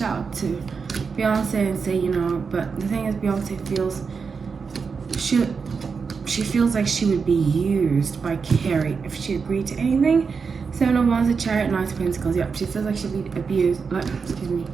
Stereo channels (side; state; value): left; quieter; 5.4 dB